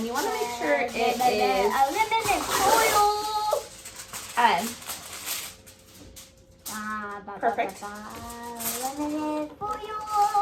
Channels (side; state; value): both; identical; correlation 1.00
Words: you want to make sure it is aluminum foil. Perfect. Aluminum foil.